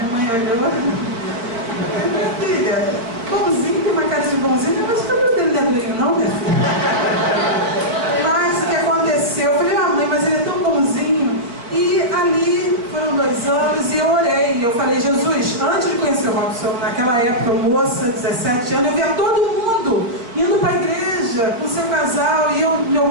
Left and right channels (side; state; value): left; late; 4.4 ms